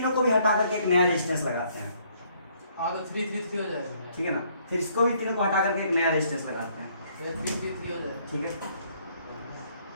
को भी हटा करके एक नया रेजिस्टेंस लगाते हैं। हाँ तो 3 3 3 हो जाएगा। ठीक है ना? फिर इसको भी तीनों को हटा करके एक नया रेजिस्टेंस लगाते हैं। 3 3 3 हो जाएगा। ठीक है,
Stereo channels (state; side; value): inverted; both; correlation -0.66